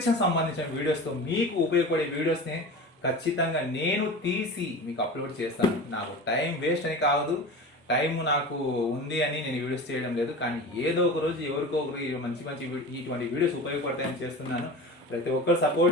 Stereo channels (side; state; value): both; normal; correlation 0.33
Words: సంబంధించిన వీడియోస్తో, మీకు ఉపయోగపడే వీడియోస్ని ఖచ్చితంగా నేను తీసి మీకు అప్లోడ్ చేస్తాను. నాకు టైం వేస్ట్ అని కాదు, టైం నాకు ఉంది అని నేను వీడియోస్ చేయడం లేదు, కానీ ఏదో ఒక రోజు ఎవరికో ఒకరు మంచి మంచి ఇటువంటి వీడియోస్ ఉపయోగపడతాయని చేస్తున్నాను. ప్రతి ఒక్కరు